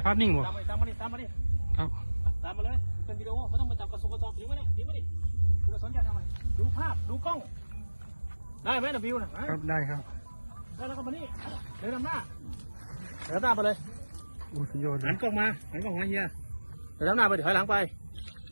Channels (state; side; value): inverted; both; correlation -1.00